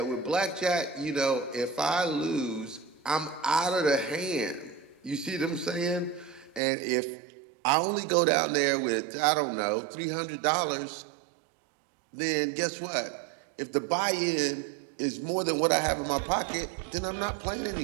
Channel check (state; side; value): drops out; left; at 6.6 s